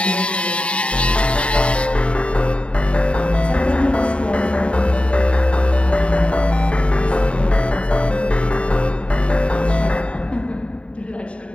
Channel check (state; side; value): late; right; 0.060 ms